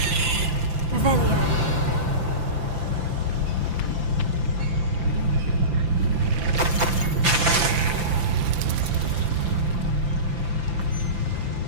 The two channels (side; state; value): left; late; 5.9 ms